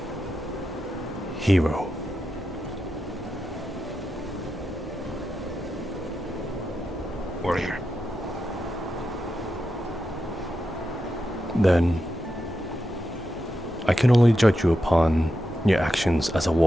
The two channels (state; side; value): normal; both; correlation 0.88